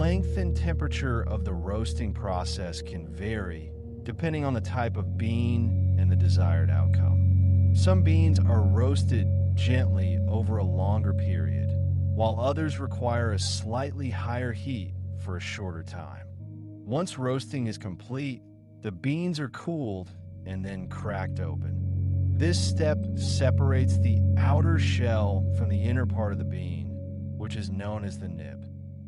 and temperature of the roasting process can vary depending on the type of bean and the desired outcome. Some beans are roasted gently over a longer period, while others require a slightly higher heat for a shorter time. Once roasting is complete, the beans are cooled and then cracked open. This step separates the outer shell from the inner part of the bean, which is known as the nib.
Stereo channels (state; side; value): identical; both; correlation 1.00